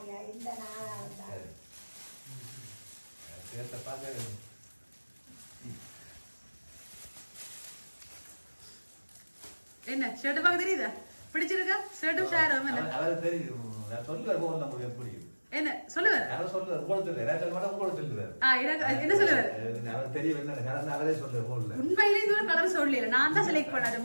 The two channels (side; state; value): both; inverted; correlation -1.00